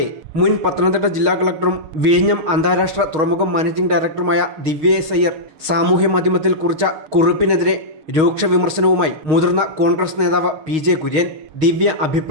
മുൻ പത്തനംതിട്ട ജില്ലാ കളക്ടറും വിഴിഞ്ഞം അന്താരാഷ്ട്ര തുറമുഖം മാനേജിംഗ് ഡയറക്ടറുമായ ദിവ്യ എസ് അയ്യർ സാമൂഹ്യ മാധ്യമത്തിൽ കുറിച്ച കുറിപ്പിനെതിരെ രൂക്ഷ വിമർശനവുമായി മുതിർന്ന കോൺഗ്രസ് നേതാവ് PJ കുര്യൻ. ദിവ്യ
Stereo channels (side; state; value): left; late; 6.4 ms